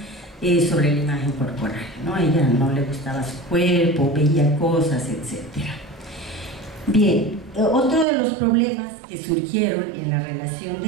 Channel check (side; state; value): left; drops out; at 8.1 s